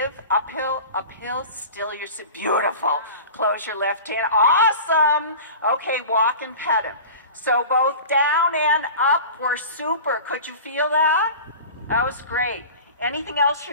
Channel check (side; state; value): both; inverted; correlation -0.36